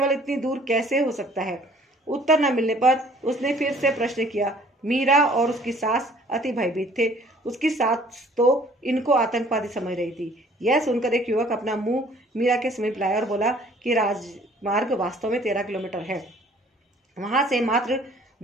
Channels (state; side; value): normal; both; correlation 0.55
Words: इतनी दूर कैसे हो सकता है? उत्तर न मिलने पर उसने फिर से प्रश्न किया। मीरा और उसकी सास अति भयभीत थे। उसकी सास तो इनको आतंकवादी समझ रही थी। यह सुनकर एक युवक अपना मुंह मीरा के समीप लाया और बोला कि राजमार्ग वास्तव में 13 किलोमीटर है। वहां से मात्र